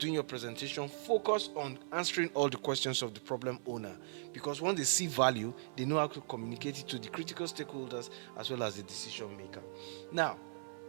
your presentation, focus on answering all the questions of the problem owner, because once they see value, they know how to communicate it to the critical stakeholders as well as the decision maker. Now,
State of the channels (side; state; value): left; silent; 52 dB below the other